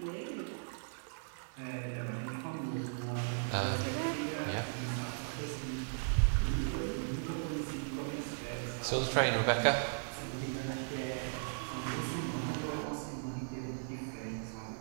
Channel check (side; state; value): left; silent; 53 dB below the other